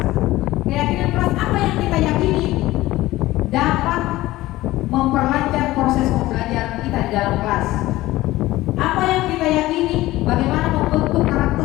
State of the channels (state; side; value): quieter; right; 17.2 dB